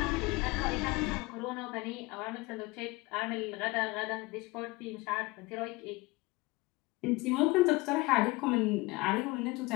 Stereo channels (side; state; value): right; quieter; 22.7 dB